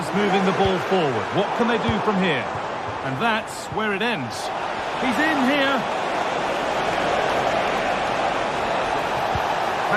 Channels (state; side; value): identical; both; correlation 1.00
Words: moving the ball forward. What can they do from here? And that's where it ends. He's in here.